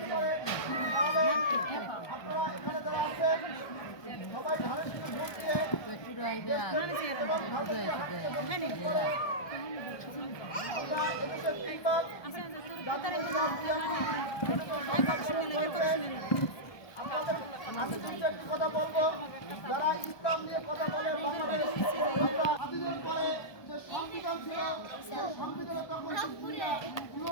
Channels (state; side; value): late; right; 1.2 ms